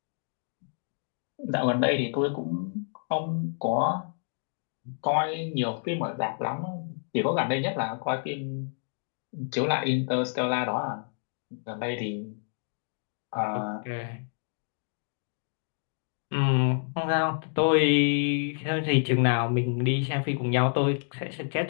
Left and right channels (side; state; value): right; silent; digital silence